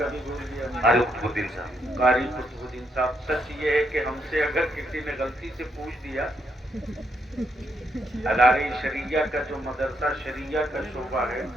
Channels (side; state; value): both; normal; correlation 0.77